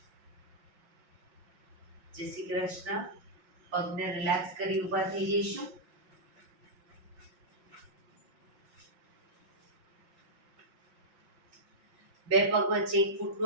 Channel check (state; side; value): late; left; 5.6 ms